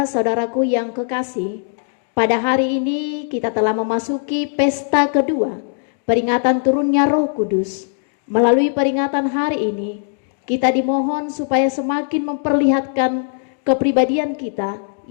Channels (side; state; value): right; silent; digital silence